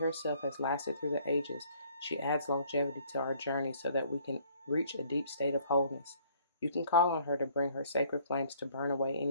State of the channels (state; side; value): inverted; both; correlation -0.59